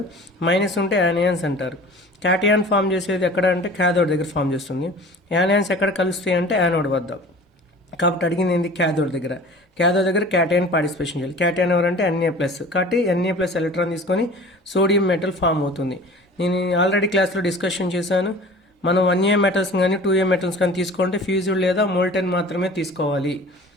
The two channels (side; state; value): both; normal; correlation 0.42